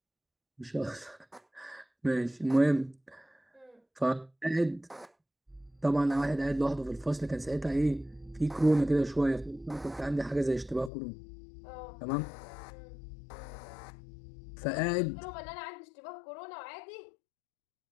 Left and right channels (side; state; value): right; drops out; at 10.9 s